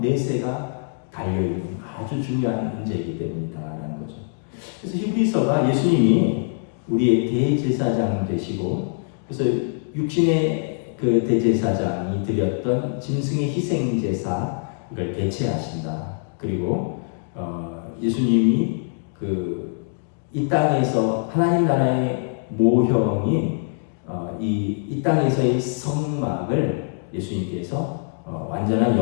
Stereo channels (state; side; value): silent; right; digital silence